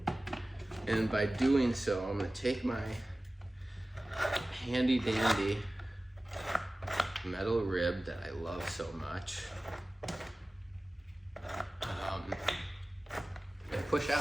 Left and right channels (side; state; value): both; normal; correlation 0.97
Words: And by doing so, I'm gonna take my handy dandy metal rib that I love so much and push